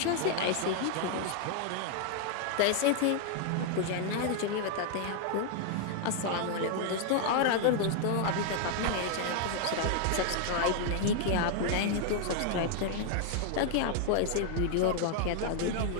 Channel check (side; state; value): both; different; correlation 0.00